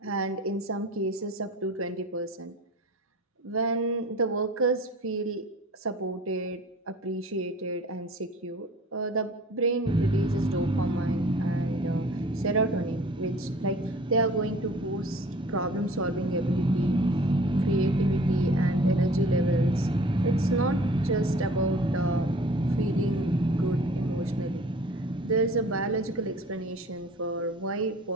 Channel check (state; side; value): normal; both; correlation 0.47